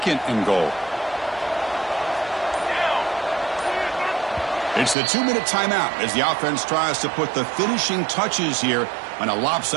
and goal. It's the 2-minute timeout as the offense tries to put the finishing touches here on a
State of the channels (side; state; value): left; drops out; at 5.0 s